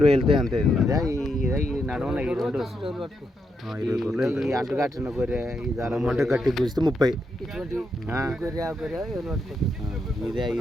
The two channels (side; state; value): both; normal; correlation 0.81